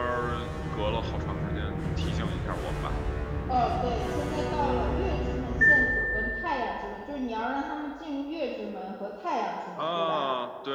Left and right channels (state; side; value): identical; both; correlation 1.00